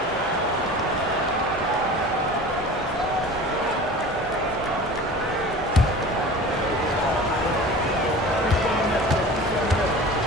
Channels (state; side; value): normal; both; correlation 0.38